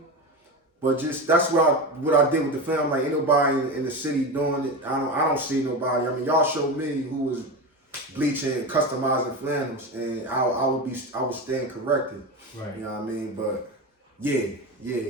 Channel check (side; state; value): both; normal; correlation 0.22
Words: But that's what I did with the family. Like ain't nobody in the city doing it. I don't see nobody. I mean, y'all showed me who was bleaching and customizing flannels, and I would stand corrected. Right. You know what I mean? But yeah.